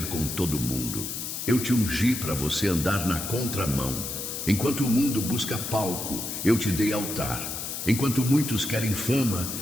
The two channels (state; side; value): noise; left; hiss, 5 dB below the sound